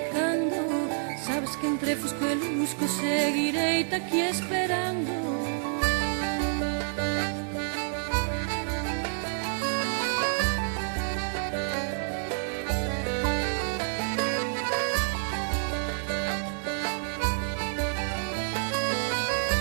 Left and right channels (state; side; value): silent; left; 59 dB below the other